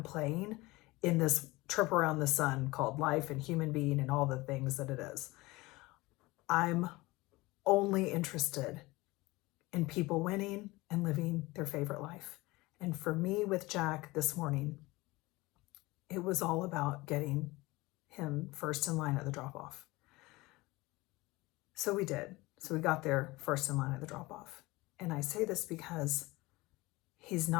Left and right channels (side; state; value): right; quieter; 21.4 dB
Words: playing in this trip around the sun called life and human being and all the things that it is. I'm only interested in people winning and living their favorite life. And for me with Jack this morning, it was all about getting him first in line at the drop-off. So we did. So we got there first in line at the drop-off. And I say this because he's